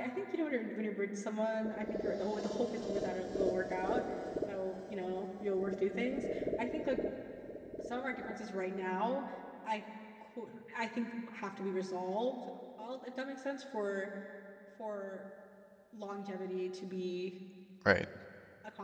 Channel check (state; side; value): identical; both; correlation 1.00